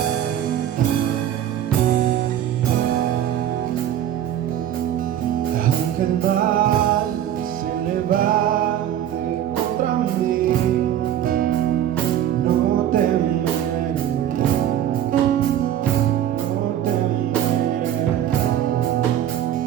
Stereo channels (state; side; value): quieter; left; 11.0 dB